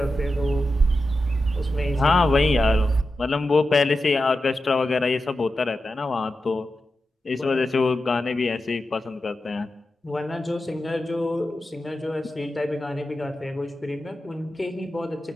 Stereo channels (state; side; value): normal; both; correlation 0.91